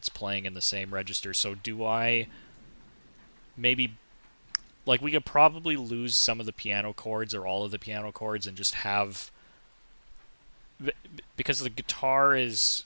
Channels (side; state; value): both; inverted; correlation -1.00